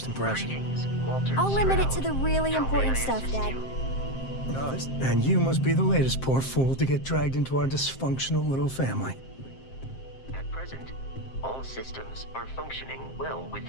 impression. Greetings, Walter I'll limit it to Stroud. the really How may important I stuff, assist Dad. you? And you must be the latest poor fool to get dragged into our dysfunctional little family. At present, all systems are functioning well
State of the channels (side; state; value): right; late; 7.6 ms